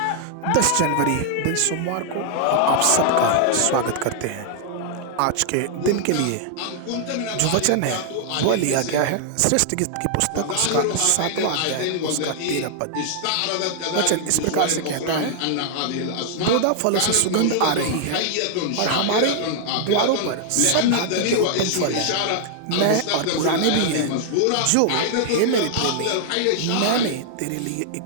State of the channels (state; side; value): different; both; correlation -0.01